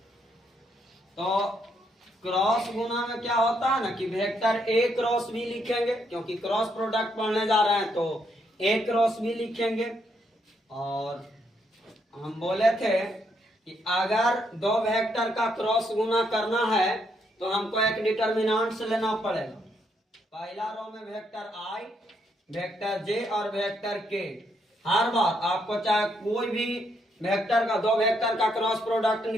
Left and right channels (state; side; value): normal; both; correlation 0.75